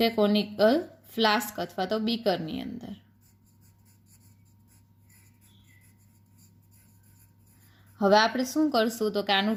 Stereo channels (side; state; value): both; identical; correlation 1.00